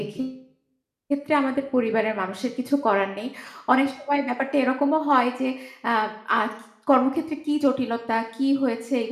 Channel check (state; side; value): identical; both; correlation 1.00